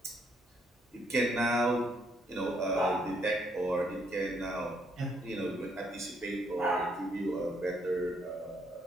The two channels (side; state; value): both; normal; correlation 0.71